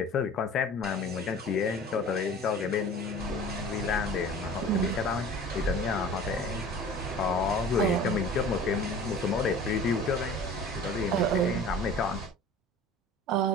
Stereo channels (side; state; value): both; normal; correlation 0.43